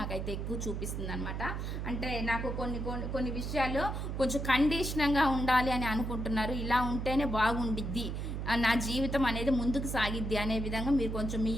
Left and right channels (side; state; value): right; noise; hum, 3 dB below the sound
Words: ఎక్కువ చూపిస్తుంది అనమాట. అంటే నాకు కొన్ని విషయాల్లో కొంచెం కండిషన్గా ఉండాలి అని అనుకుంటున్నారు. ఇలా ఉంటేనే బాగుండిద్ది, నా జీవితం అనేది ముందుకు సాగిద్ది అనే విధంగా మీరు కొంచెం మీ